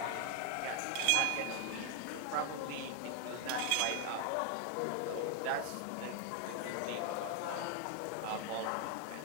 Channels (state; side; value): different; both; correlation 0.01